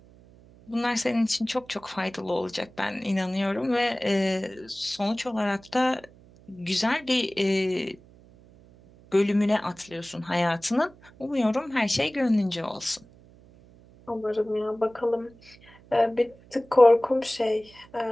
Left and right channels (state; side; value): noise; right; hum, 25 dB below the sound